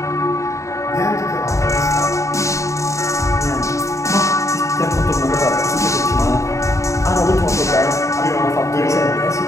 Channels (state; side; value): late; right; 0.15 ms